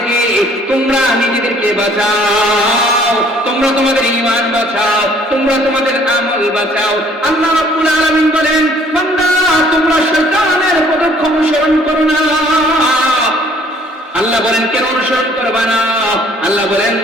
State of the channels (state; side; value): normal; both; correlation 0.58